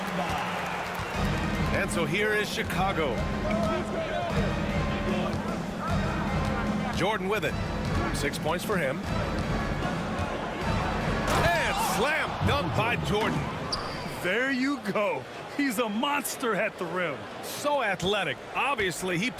And so here is Chicago. Jordan with it. 6 points for him. And slam dunk by Jordan. There you go. He's a monster at the rim. So athletic. Obviously, he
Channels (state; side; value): identical; both; correlation 1.00